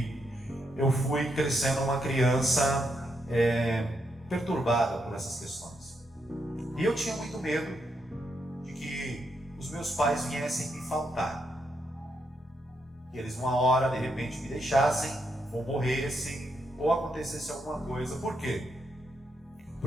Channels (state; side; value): normal; both; correlation 0.80